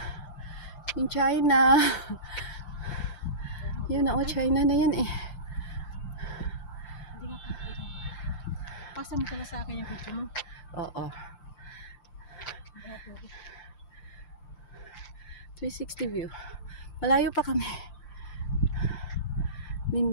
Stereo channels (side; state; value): right; late; 5.8 ms